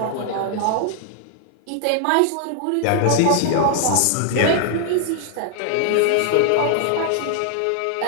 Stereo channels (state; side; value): different; both; correlation 0.00